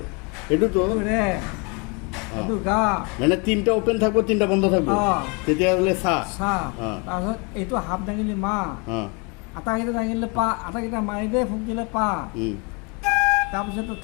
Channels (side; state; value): right; quieter; 31.2 dB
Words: এটু তো রে হ্যাঁ। এটা গা মানে তিনটা ওপেন থাকবো তিনটা বন্ধ থাকবো তেতিয়া হলে সা সা হ্যাঁ। তাৰপিছত এইটো হাফ দাঙিলে মা হ্যাঁ আটাকেইটা দাঙিলে পা আটাকেইটা মাৰি দিয়ে ফুক দিলে পা তাৰপিছতো